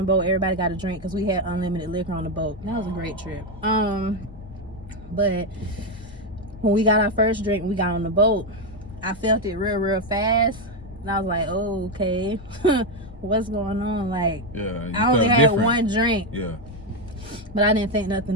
boat, everybody got a drink because we had unlimited liquor on the boat. That was a great trip. But when we got our first drink, we got on the boat, I felt it real fast. And I was like, oh, okay. What's going on? Like, Yeah. I only had one drink. Yeah. But I didn't think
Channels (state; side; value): normal; both; correlation 0.06